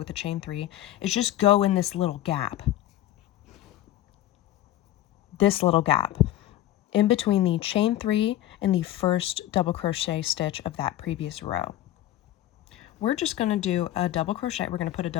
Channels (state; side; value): quieter; right; 13.6 dB